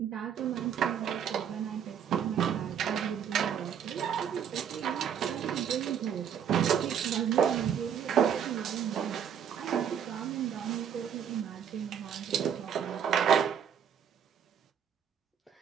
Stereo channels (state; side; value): quieter; left; 8.4 dB